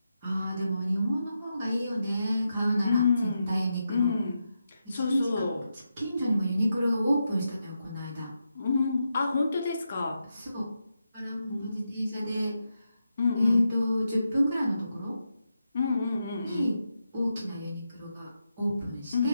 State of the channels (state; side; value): inverted; both; correlation -0.86